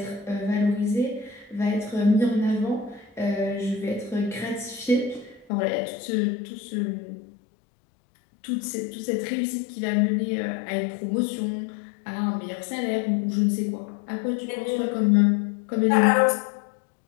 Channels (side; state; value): right; drops out; at 5.5 s